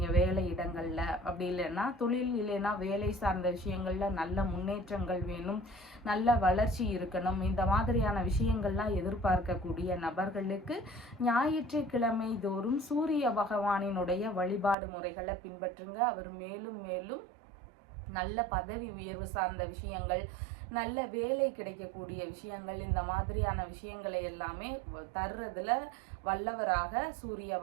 வேலை இடங்கள்ல, அப்படி இல்லைன்னா தொழில் இல்லைன்னா வேலை சார்ந்த விஷயங்கள்ல நல்ல முன்னேற்றங்கள் வேணும், நல்ல வளர்ச்சி இருக்கணும், இந்த மாதிரியான விஷயங்கள்லாம் எதிர்பார்க்கக்கூடிய நபர்களுக்கு ஞாயிற்றுக்கிழமை தோறும் சூரிய பகவானினுடைய வழிபாடு முறைகளை பின்பற்றுங்க. அவர் மேலும் மேலும் நல்ல பதவி உயர்வு சார்ந்த விஷயங்கள், நல்ல வேலை கிடைக்கக்கூடிய விஷயங்கள், இந்த மாதிரியான விஷயங்களை எல்லாமே தர்றதுல வல்லவராக சூரிய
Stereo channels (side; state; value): left; drops out; at 14.8 s